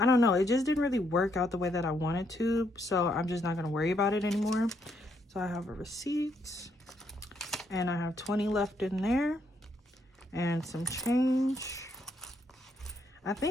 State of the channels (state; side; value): normal; both; correlation 0.74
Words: don't know, it just didn't really work out the way that I wanted to, so I'm just not going to worry about it anymore. So I have a receipt, and I have 20 left in there, and some change. I